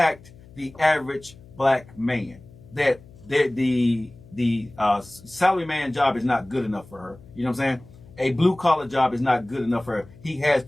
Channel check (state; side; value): noise; left; hum, 22 dB below the sound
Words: the average black man. That the salary man job is not good enough for her. You know what I'm saying? A blue collar job is not good enough for her. He has